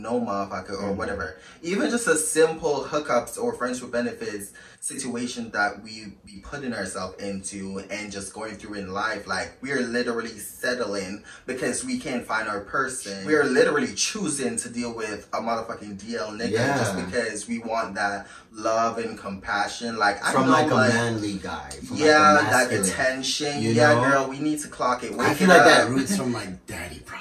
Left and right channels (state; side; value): identical; both; correlation 1.00